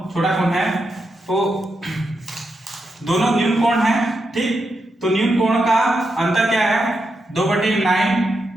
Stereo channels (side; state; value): both; normal; correlation 0.85